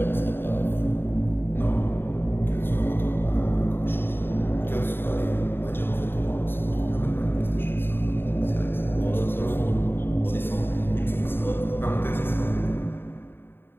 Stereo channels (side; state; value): right; late; 0.10 ms